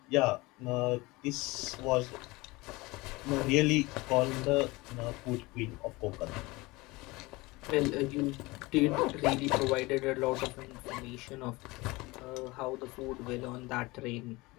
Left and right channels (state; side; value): quieter; right; 22.5 dB